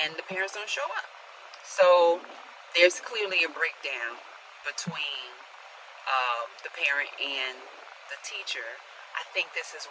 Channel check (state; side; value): identical; both; correlation 1.00